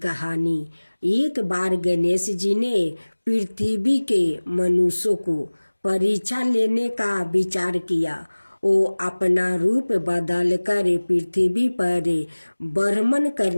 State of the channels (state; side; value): inverted; both; correlation -1.00